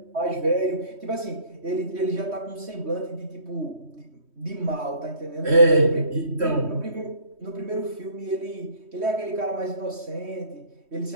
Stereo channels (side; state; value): left; late; 3.2 ms